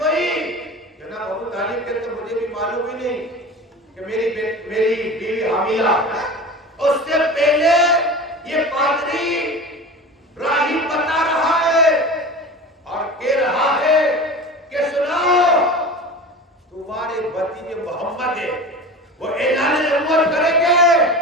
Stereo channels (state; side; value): normal; both; correlation 0.33